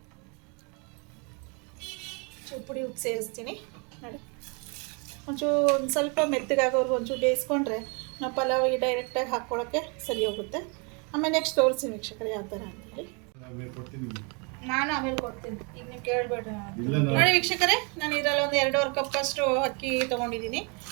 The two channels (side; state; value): left; quieter; 33.6 dB